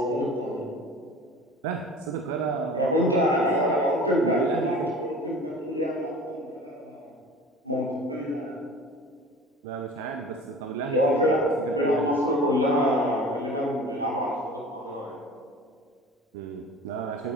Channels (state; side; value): normal; both; correlation 0.41